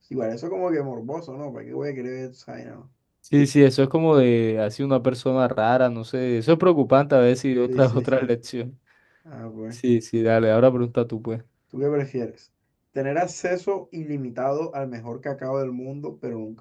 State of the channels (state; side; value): identical; both; correlation 1.00